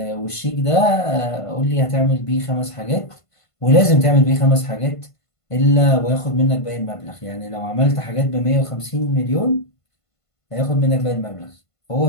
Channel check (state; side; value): late; right; 1.5 ms